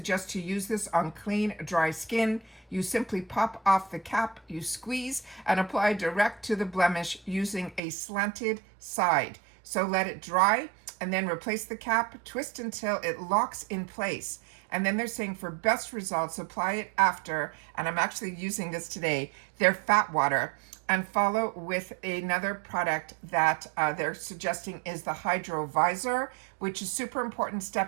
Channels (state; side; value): drops out; left; at 7.8 s